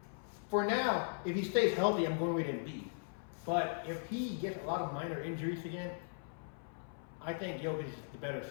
For now, if he stays healthy, I'm going with Embiid. But if he gets a lot of minor injuries again, I think Jokic is the better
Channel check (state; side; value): silent; right; 52 dB below the other